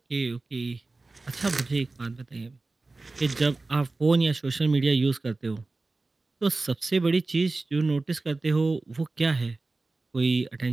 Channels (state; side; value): quieter; left; 3.4 dB